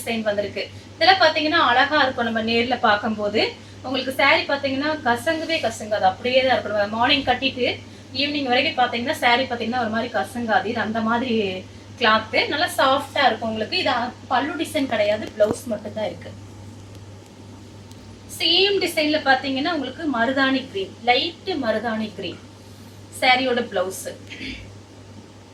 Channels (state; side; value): identical; both; correlation 1.00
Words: வந்திருக்கு. இதெல்லாம் பாத்தீங்கன்னா அழகா இருக்கும் நம்ம நேர்ல பார்க்கும்போது. உங்களுக்கு சாரி பாத்தீங்கன்னா கசங்கவே கசங்காது, அப்படியே தான் இருக்கணும். மார்னிங் கட்டிட்டு ஈவினிங் வரைக்கும் பாத்தீங்கன்னா சாரி பாத்தீங்கன்னா ஒரு மாதிரி கசங்காது. இது அந்த மாதிரி கிளாத் நல்லா சாஃப்டா இருக்கும் உங்களுக்கு. இது பல்லு டிசைன் கிடையாது, பிளவுஸ் மட்டும் தான் இருக்கு. சேம் டிசைன்ல பாத்தீங்கன்னா உங்களுக்கு மருதாணி கிரீன், லைட் மருதாணி கிரீன் சாரியோட பிளவுஸ்.